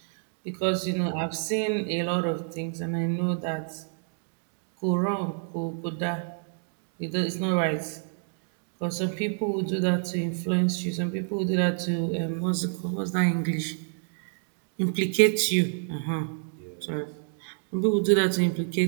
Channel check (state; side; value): silent; left; 59 dB below the other